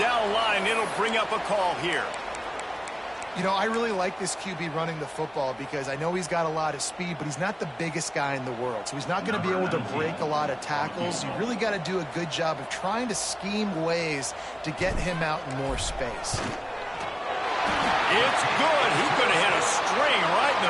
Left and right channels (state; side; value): identical; both; correlation 1.00